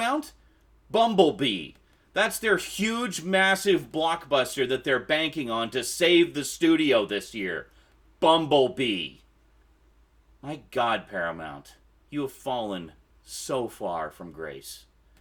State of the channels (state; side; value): identical; both; correlation 1.00